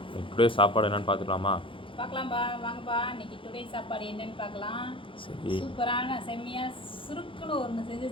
டுடே சாப்பாடு என்னன்னு பார்த்துக்கலாமா? பார்க்கலாம்ப்பா, வாங்கப்பா. இன்னைக்கு டுடே சாப்பாடு என்னன்னு பார்க்கலாம். சரி, சூப்பரான செம்மையா சுருக்குன்னு ஒன்று செஞ்சு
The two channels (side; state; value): right; late; 0.25 ms